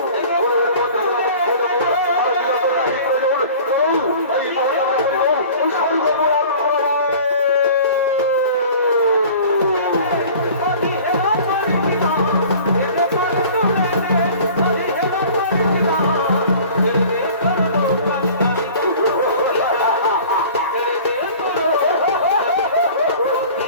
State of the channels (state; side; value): inverted; both; correlation -0.44